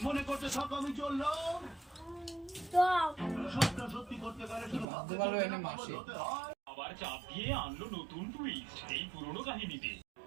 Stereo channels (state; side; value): drops out; left; at 4.9 s